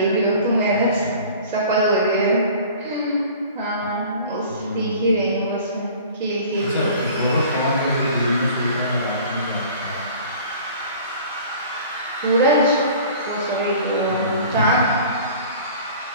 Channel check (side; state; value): both; inverted; correlation -0.45